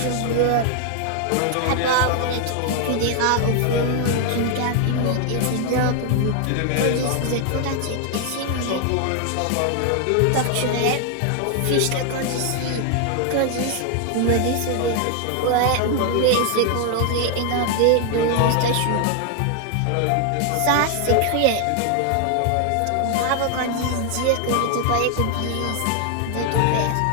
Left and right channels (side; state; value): both; different; correlation 0.00